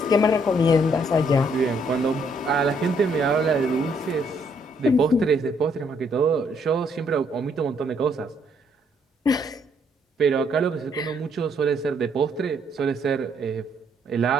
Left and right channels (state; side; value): normal; both; correlation 0.70